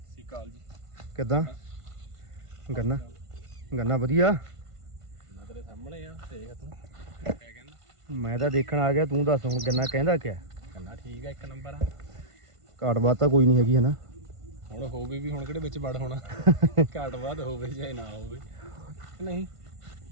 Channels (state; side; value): late; left; 1.5 ms